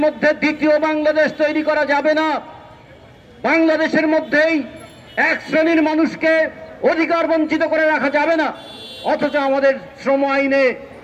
মধ্যে দ্বিতীয় বাংলাদেশ তৈরি করা যাবে না। বাংলাদেশের মধ্যেই এক শ্রেণীর মানুষকে অধিকার বঞ্চিত করে রাখা যাবে না। অথচ আমাদের শ্রম আইনে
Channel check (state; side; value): identical; both; correlation 1.00